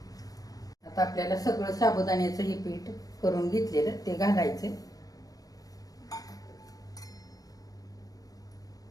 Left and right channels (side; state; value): right; late; 0.18 ms